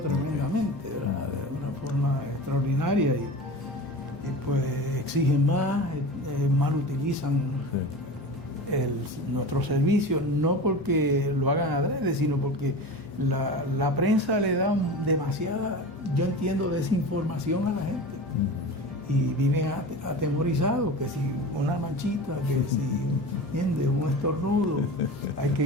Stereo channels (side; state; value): both; normal; correlation 0.31